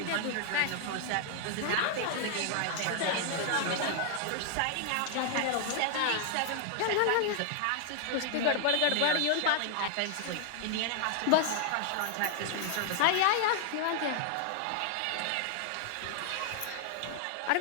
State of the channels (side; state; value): both; different; correlation 0.00